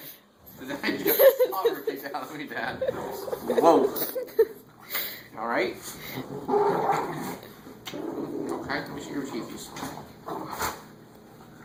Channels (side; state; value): both; identical; correlation 1.00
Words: Did just slobber kicked out of me, Dad? Whoa. Alright? Okay, let me see your teeth.